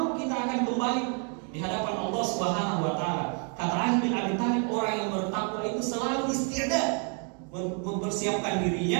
kita akan kembali di hadapan Allah Subhanahu wa taala. Kata Ali bin Abi Thalib, orang yang bertakwa itu selalu isti'dad, mempersiapkan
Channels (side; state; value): left; quieter; 38.8 dB